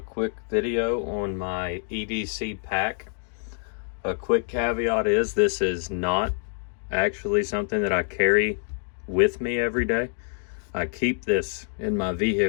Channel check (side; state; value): right; silent; 61 dB below the other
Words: video on my EDC pack. A quick caveat is this is not actually something that I carry with me every day. I keep this in my